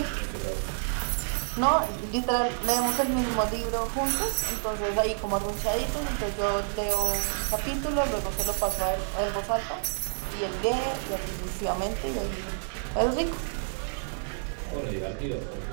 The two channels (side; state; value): left; silent; digital silence